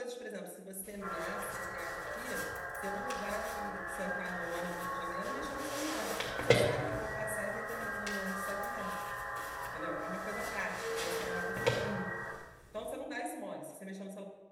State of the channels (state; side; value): identical; both; correlation 1.00